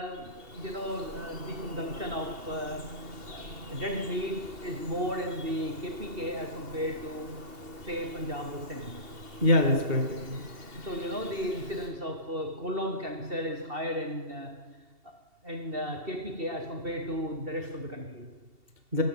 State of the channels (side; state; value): left; late; 2.7 ms